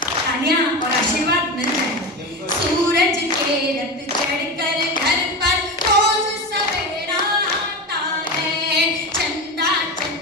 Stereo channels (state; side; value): normal; both; correlation 0.22